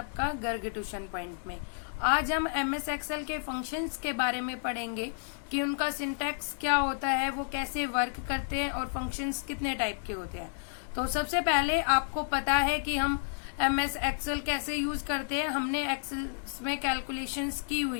गर्ग ट्यूशन पॉइंट में। आज हम एमएस एक्सेल के फंक्शंस के बारे में पढ़ेंगे कि उनका सिंटैक्स क्या होता है, वो कैसे वर्क करते हैं और फंक्शंस कितने टाइप के होते हैं। तो सबसे पहले आपको पता है कि हम एमएस एक्सेल कैसे यूज करते हैं। हमने एक्सेल में कैलकुलेशंस की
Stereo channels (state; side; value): silent; right; 57 dB below the other